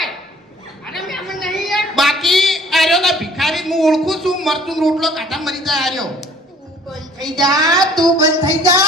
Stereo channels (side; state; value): both; normal; correlation 0.54